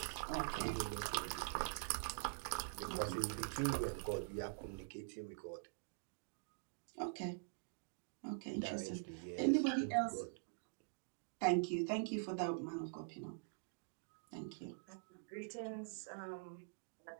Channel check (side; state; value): left; silent; digital silence